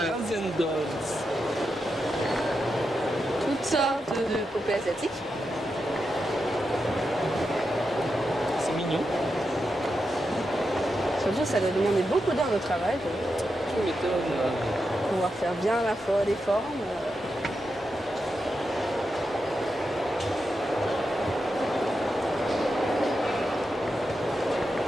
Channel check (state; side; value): normal; both; correlation 0.87